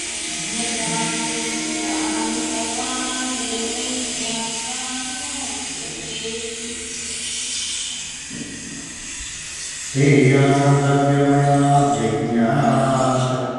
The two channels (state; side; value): identical; both; correlation 1.00